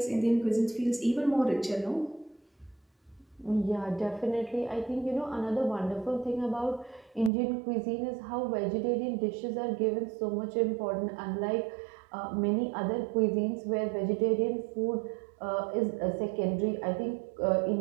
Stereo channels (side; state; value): left; drops out; at 7.3 s